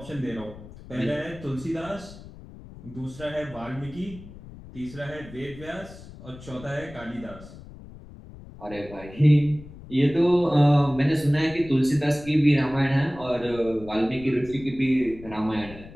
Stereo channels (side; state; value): left; noise; rumble, 17 dB below the sound